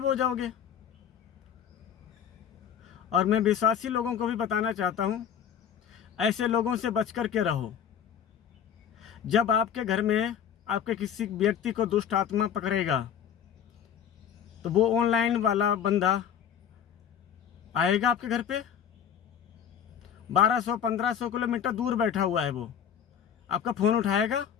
हो जाओगे। और मैं विश्वासी लोगों को भी बताना चाहता हूँ, ऐसे लोगों से बच कर के रहो। जब आपके घर में आपके किसी व्यक्ति को दुष्ट आत्मा पकड़ेगा तो वो ऑनलाइन वाला बंदा आएगा आपके घर पे। 1200-1500 किलोमीटर दूर बैठा हुआ है वो, आपका फ़ोन उठाएगा?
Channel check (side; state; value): right; quieter; 8.6 dB